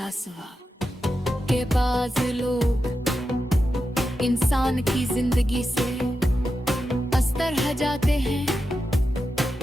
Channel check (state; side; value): normal; both; correlation 0.89